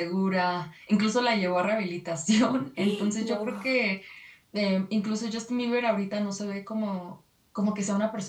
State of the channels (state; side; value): identical; both; correlation 1.00